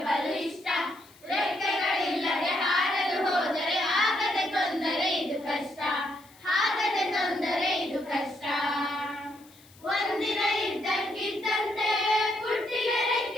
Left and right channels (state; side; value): noise; left; hiss, 26 dB below the sound